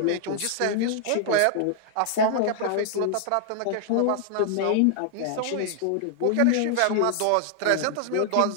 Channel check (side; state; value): both; different; correlation 0.00